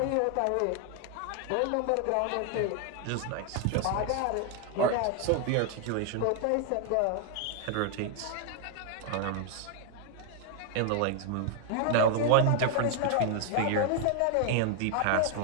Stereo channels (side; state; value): both; different; correlation 0.00